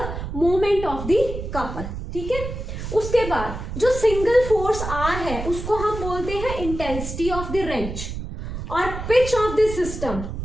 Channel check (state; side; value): noise; right; rumble, 7 dB below the sound